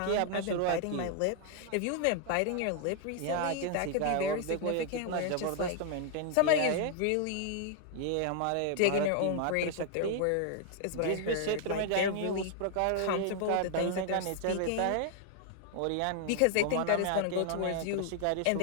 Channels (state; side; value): different; both; correlation 0.00